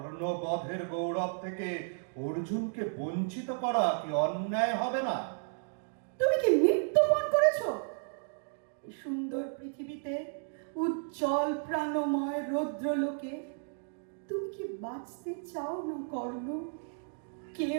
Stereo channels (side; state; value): left; silent; digital silence